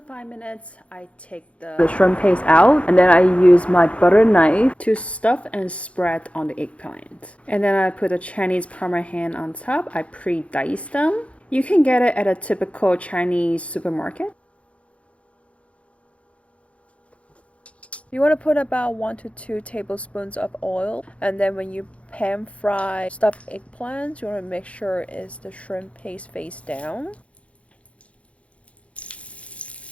minutes, I take the shrimp paste out and then I use my butter knife to stuff and spread on the eggplant. And then I put the Chinese Parmesan on top. I pre-dice them. You can get it at a typical Chinese supermarket. You want to put about 1 to 2 tablespoons of oil, and then when you pan fry stuffed eggplants, you want to make sure it's the shrimp paste face down.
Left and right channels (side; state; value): right; late; 0.063 ms